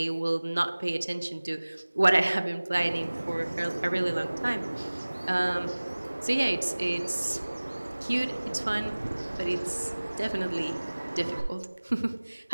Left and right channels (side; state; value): both; inverted; correlation -1.00